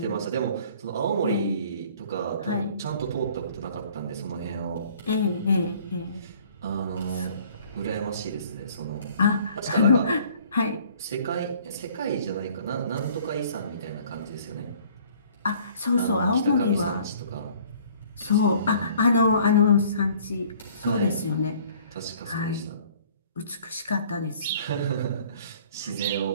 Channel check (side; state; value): both; inverted; correlation -0.54